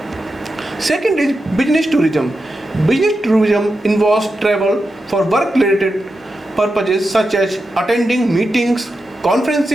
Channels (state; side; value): normal; both; correlation 0.89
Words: Second is business tourism. Business tourism involves travel for work-related purposes such as attending meetings,